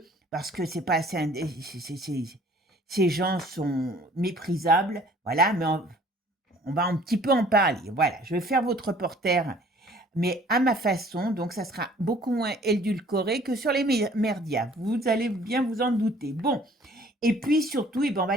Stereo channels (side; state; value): both; normal; correlation 0.54